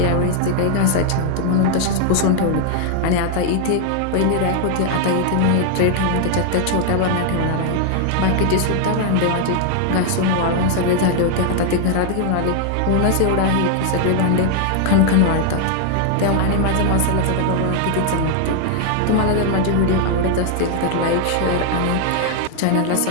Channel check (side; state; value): both; different; correlation 0.00